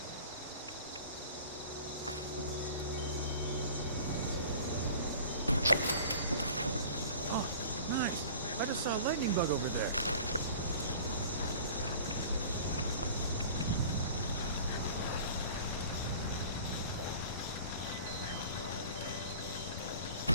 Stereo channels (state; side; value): inverted; both; correlation -0.43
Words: I just saw a lightning bug over there.